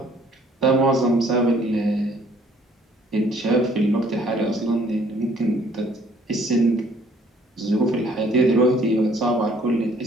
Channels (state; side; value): normal; both; correlation 0.60